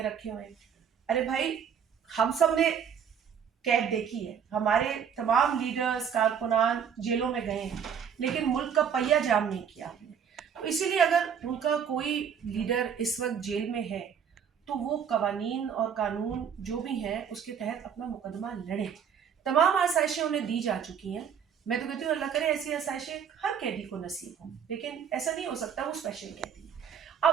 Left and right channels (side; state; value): left; quieter; 7.7 dB